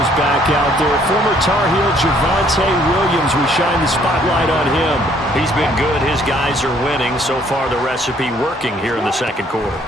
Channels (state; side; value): normal; both; correlation 0.63